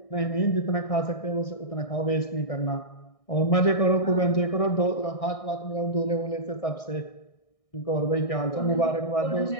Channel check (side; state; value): right; late; 1.6 ms